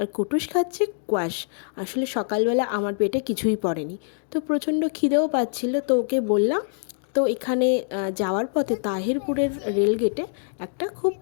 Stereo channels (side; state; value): right; silent; digital silence